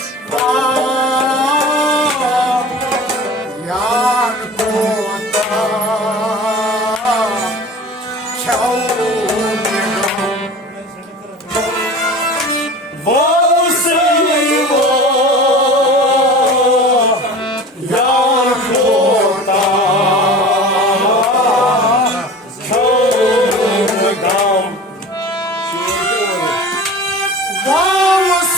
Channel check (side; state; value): both; normal; correlation 0.38